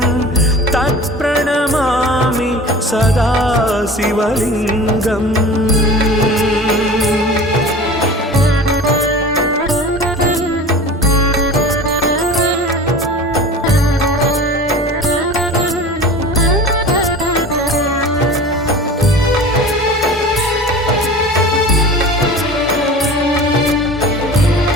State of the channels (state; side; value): normal; both; correlation 0.38